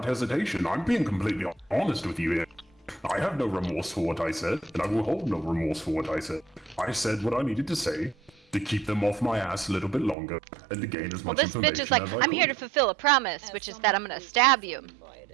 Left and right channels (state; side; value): drops out; left; at 10.2 s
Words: hesitation. I'm being completely honest with you here. I have no remorse for what I said, and I will hold no remorse for what I said. I said what I needed to say to keep them off my ass a little bit longer and to gain as much information as I could. Well, this bitch is like, I'm here to fulfill a promise, which is that I'm gonna stab you.